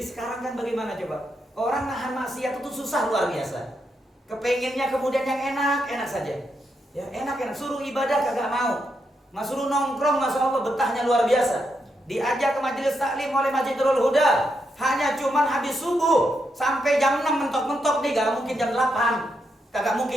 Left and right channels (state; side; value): normal; both; correlation 0.82